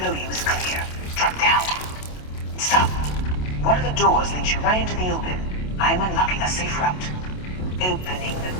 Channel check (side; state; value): right; late; 27 ms